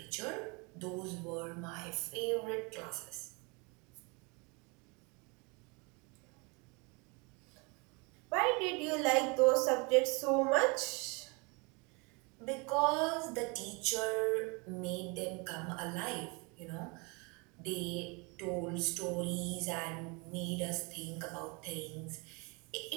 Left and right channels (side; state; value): left; quieter; 30.2 dB